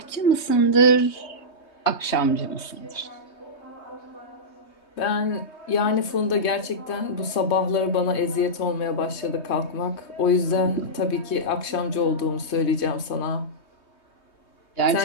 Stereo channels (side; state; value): right; late; 3.2 ms